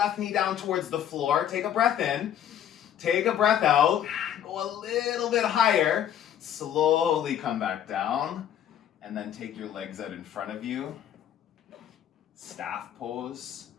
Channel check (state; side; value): quieter; right; 10.2 dB